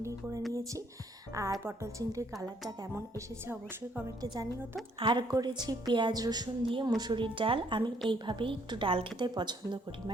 করে নিয়েছি, আর পটল চিংড়ির কালারটা কেমন এসেছে অবশ্যই কমেন্টে জানিও তো। আর করেছি পেঁয়াজ রসুন দিয়ে মুসুরির ডাল। আমি এইভাবেই একটু ডাল খেতে পছন্দ করি,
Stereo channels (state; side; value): normal; both; correlation 0.67